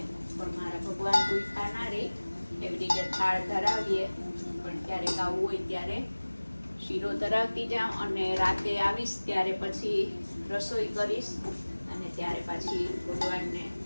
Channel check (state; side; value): inverted; both; correlation -1.00